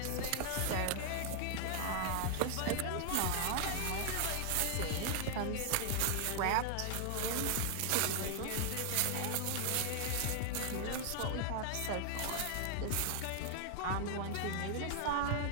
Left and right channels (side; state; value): both; different; correlation 0.00